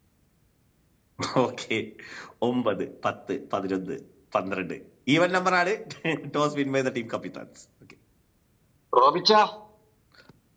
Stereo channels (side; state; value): both; identical; correlation 1.00